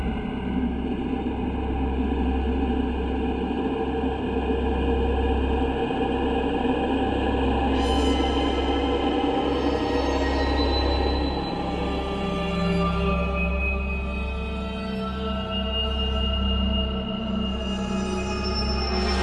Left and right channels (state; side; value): identical; both; correlation 1.00